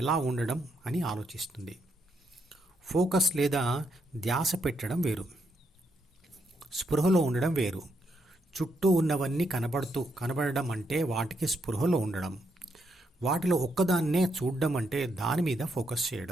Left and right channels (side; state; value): both; normal; correlation 0.78